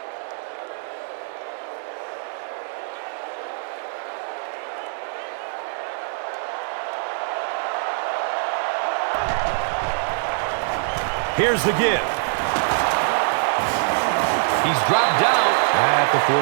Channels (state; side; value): silent; left; digital silence